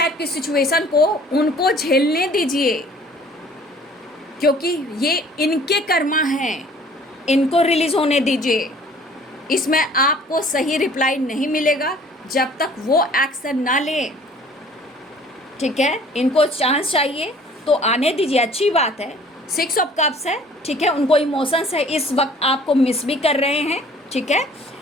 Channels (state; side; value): normal; both; correlation 0.52